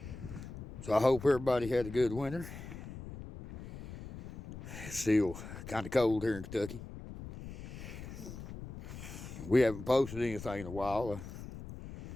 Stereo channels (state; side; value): noise; left; rumble, 11 dB below the sound